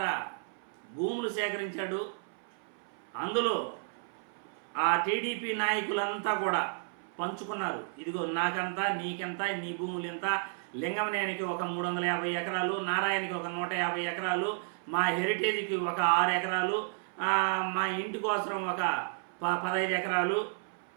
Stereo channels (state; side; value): silent; left; 56 dB below the other